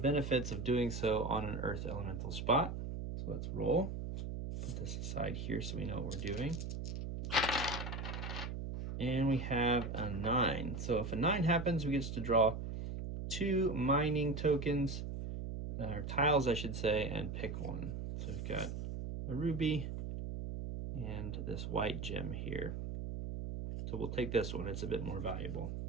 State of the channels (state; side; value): noise; right; hum, 5 dB below the sound